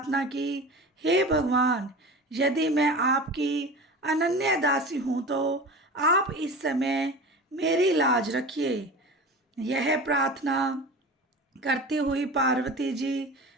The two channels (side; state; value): both; normal; correlation 0.33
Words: की, हे भगवान, यदि मैं आपकी अनन्य दासी हूँ तो आप इस समय मेरी लाज रखिए। यह प्रार्थना करती हुई पार्वती जी